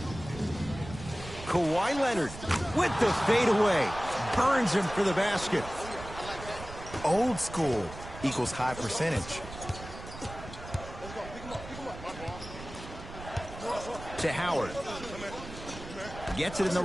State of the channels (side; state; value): right; noise; rumble, 13 dB below the sound